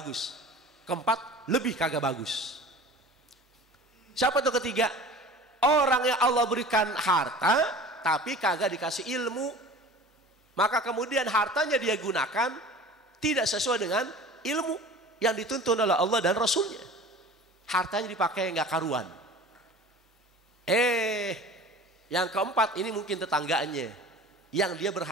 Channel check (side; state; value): both; normal; correlation 0.41